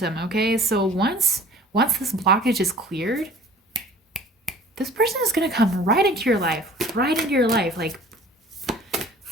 okay? So once this blockage is cleared, this person is going to come right into your life. Right into your life. Like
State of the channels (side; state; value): both; normal; correlation 0.47